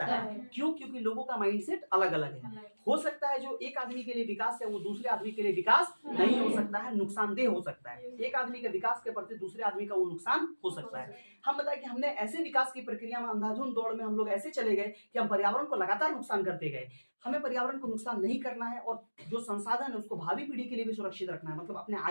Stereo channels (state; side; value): inverted; both; correlation -1.00